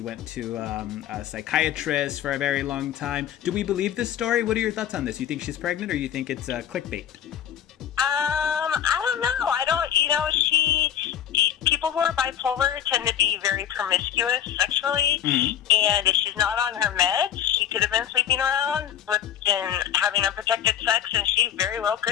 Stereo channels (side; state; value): right; quieter; 10.1 dB